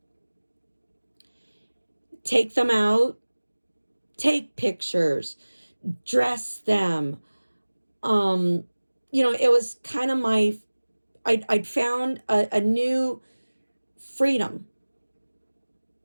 take them out, take pictures, dress them. You know, it was kind of I'd found a new freedom.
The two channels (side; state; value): both; inverted; correlation -1.00